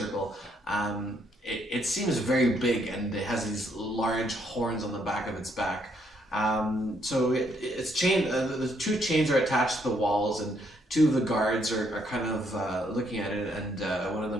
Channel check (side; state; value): both; normal; correlation 0.72